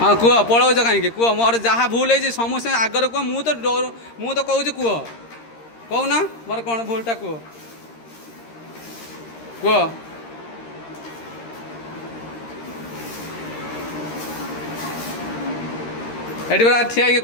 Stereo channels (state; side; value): late; right; 13 ms